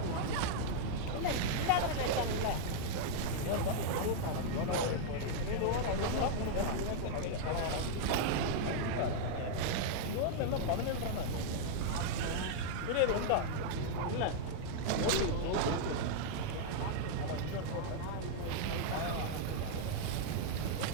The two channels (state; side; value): different; both; correlation -0.01